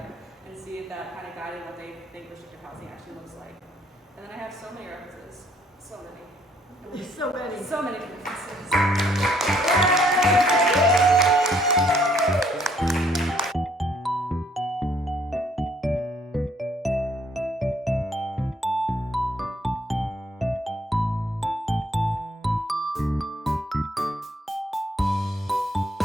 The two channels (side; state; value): both; normal; correlation 0.66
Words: and see if that kind of guided what they think restrictive housing actually looks like. And then I have so many references. So many. So many. So many references.